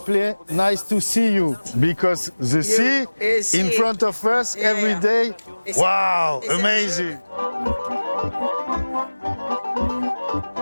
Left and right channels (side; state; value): both; inverted; correlation -1.00